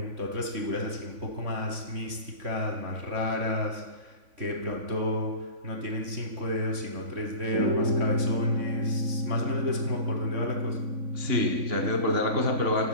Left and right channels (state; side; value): late; left; 3.5 ms